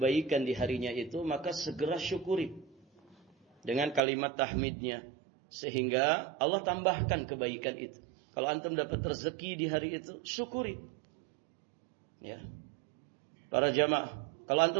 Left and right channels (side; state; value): left; drops out; at 4.0 s